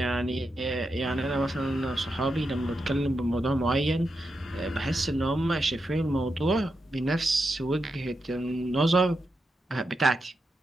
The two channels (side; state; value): both; normal; correlation 0.86